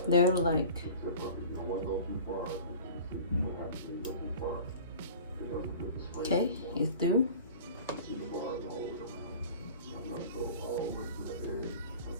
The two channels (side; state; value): both; inverted; correlation -0.41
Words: They're like okay, it's through.